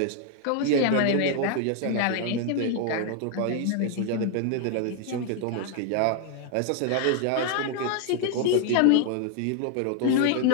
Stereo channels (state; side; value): different; both; correlation 0.00